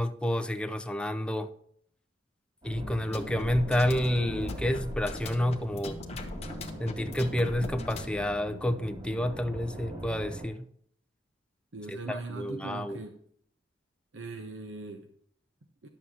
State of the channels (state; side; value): normal; both; correlation 0.88